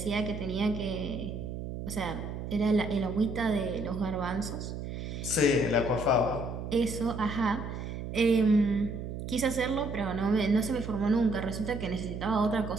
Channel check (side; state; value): right; noise; hum, 7 dB below the sound